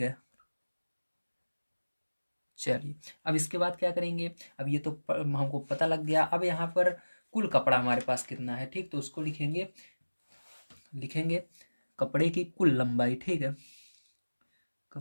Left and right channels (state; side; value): inverted; both; correlation -1.00